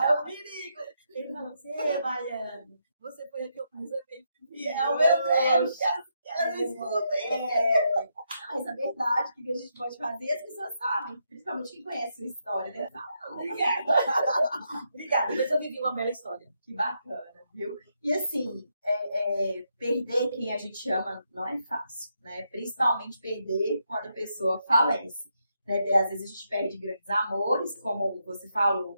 É o perigo. Ele falou assim, ei, Baiana, você foi a que eu mais amei e fui fiel. Meu Deus, ela não escuta. Mas a verdade, o que a gente pode fazer, as pessoas sabem, principalmente quem conhece sua história, né? Obrigada, mas eu vivi uma bela história. Que bacana, viu? E assim, perder quem a gente ama não é fácil, né? Principalmente perder quando a pessoa falece. Né? Às vezes a gente perde grandes amores, como você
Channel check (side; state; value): both; inverted; correlation -0.80